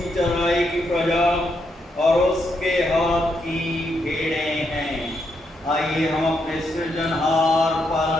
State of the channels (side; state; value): both; normal; correlation 0.79